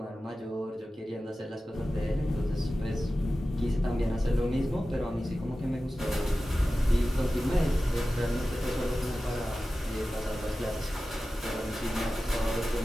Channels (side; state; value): both; normal; correlation 0.95